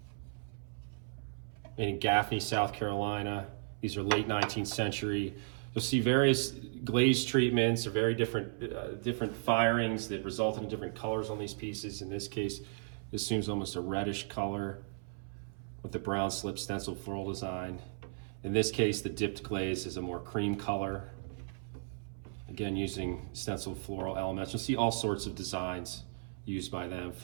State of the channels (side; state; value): left; silent; 54 dB below the other